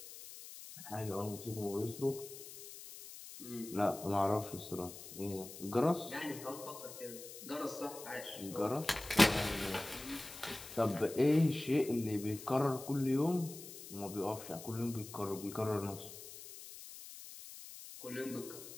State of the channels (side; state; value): left; noise; hiss, 13 dB below the sound